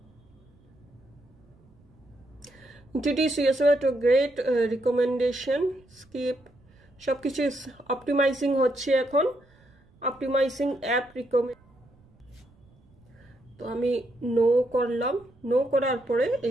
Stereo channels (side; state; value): right; noise; rumble, 30 dB below the sound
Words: Introduce yourself to great recommendation, skip, সব কিছু অপটিমাইজিং হচ্ছে এখন, অপটিমাইজিং অ্যাপ রিকমেন্ড। তো আমি নো করলাম, নো করার পরে